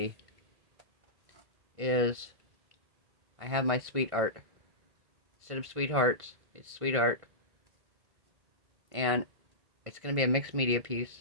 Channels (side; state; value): left; late; 1.5 ms